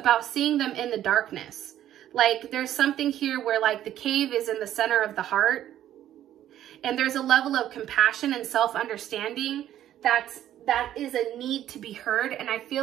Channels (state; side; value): quieter; left; 11.9 dB